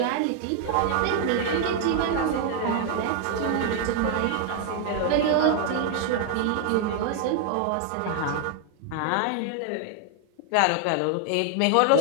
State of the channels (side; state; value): both; different; correlation 0.00